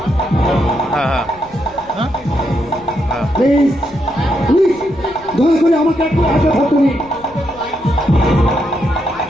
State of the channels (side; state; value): left; noise; rumble, 23 dB below the sound